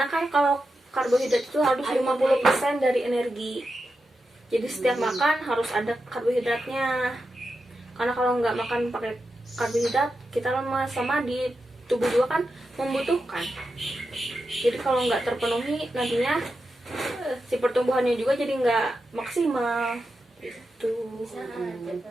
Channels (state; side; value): normal; both; correlation 0.89